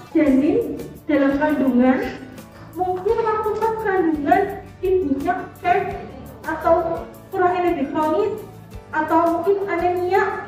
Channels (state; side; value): identical; both; correlation 1.00